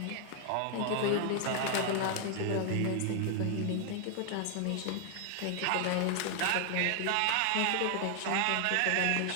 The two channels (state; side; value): different; both; correlation 0.00